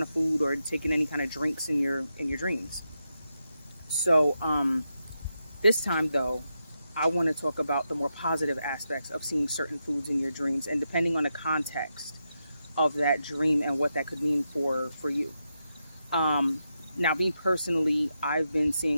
of food or taking any kind of drinks in your dreams. So this time, though, I want to talk about the more positive aspects of seeing certain foods in your dreams, and depending on the context of that dream and what that could mean for you. Now, me personally, I've been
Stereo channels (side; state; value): both; inverted; correlation -0.85